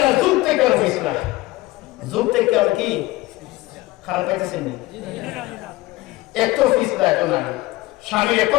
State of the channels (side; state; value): right; quieter; 19.0 dB